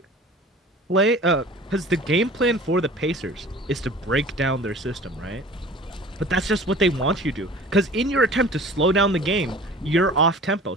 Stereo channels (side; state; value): both; normal; correlation 0.43